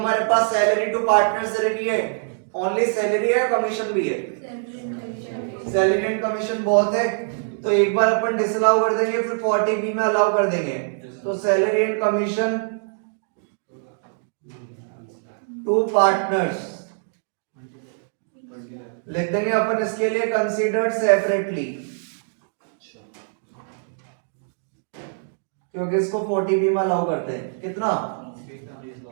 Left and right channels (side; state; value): left; silent; digital silence